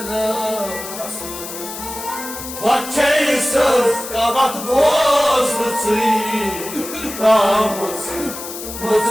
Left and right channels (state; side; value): noise; left; hiss, 10 dB below the sound